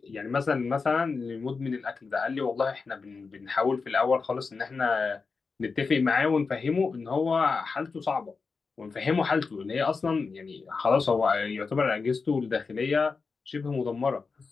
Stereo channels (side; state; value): right; quieter; 4.7 dB